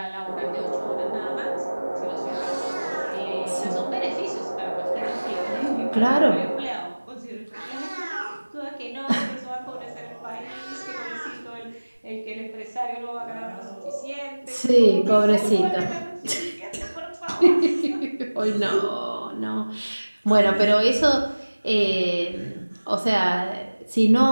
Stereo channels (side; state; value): both; inverted; correlation -1.00